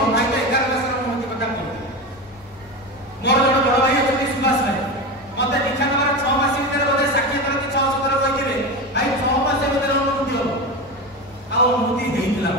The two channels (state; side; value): normal; both; correlation 0.22